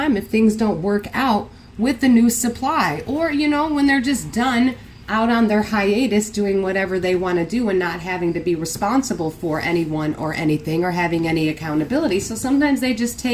if things don't work out with the new supply, or when they're just done out on their hiatus doing whatever they want to do and not having to be responsible for anyone or anything or having any accountability. So sometimes they just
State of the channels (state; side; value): identical; both; correlation 1.00